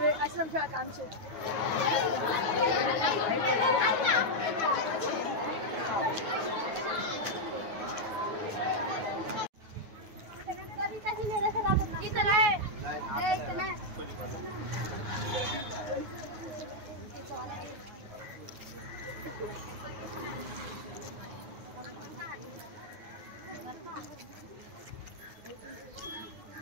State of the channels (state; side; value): late; left; 9.3 ms